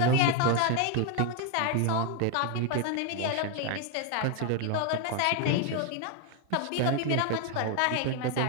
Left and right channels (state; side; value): different; both; correlation 0.01